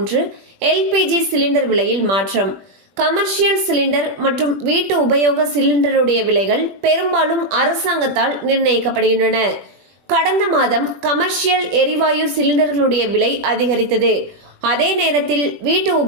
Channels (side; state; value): left; late; 21 ms